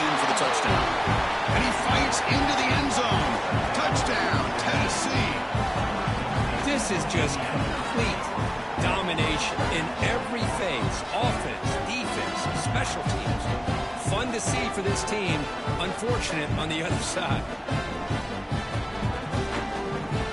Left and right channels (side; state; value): both; identical; correlation 1.00